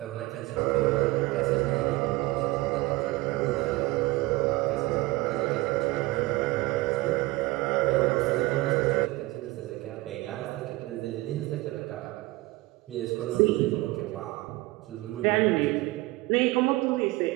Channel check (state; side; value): quieter; left; 20.6 dB